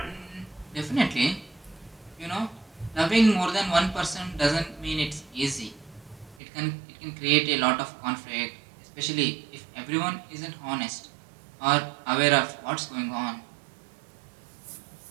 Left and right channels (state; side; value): drops out; left; at 6.4 s